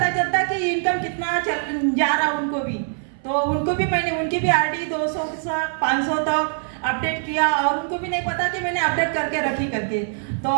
चलता कि इनकम कितना जा रहा उनको भी। तो उनको भी मैंने उनकी भी आरडी 200 से 500 तक अपडेट किया, और उनको भी नहीं पता कि मैंने अपडेट करके रखी करके।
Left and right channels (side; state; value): left; silent; 60 dB below the other